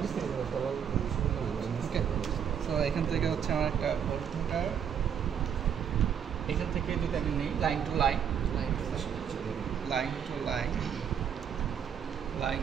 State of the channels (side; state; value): left; quieter; 8.1 dB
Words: ওকে, সো এখান থেকে হচ্ছে আমার একটা ভোল্ট মিটার, এখান থেকে যদি আমি নিই line to line, line to line, line